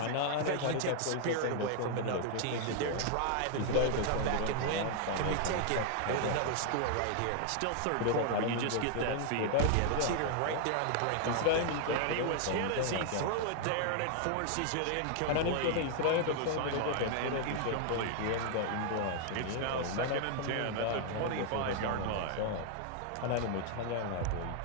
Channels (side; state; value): both; different; correlation 0.00